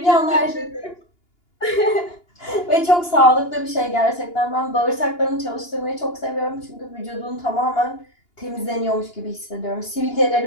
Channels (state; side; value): late; right; 2.8 ms